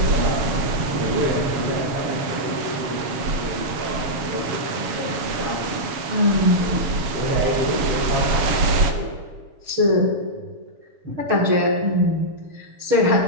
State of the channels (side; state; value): left; late; 7.2 ms